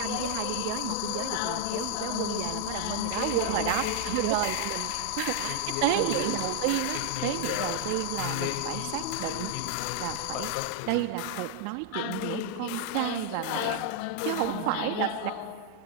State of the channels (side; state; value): both; different; correlation 0.00